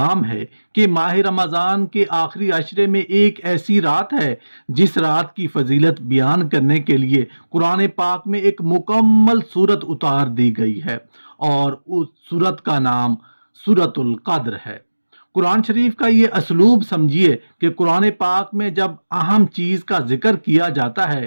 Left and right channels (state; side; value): inverted; both; correlation -1.00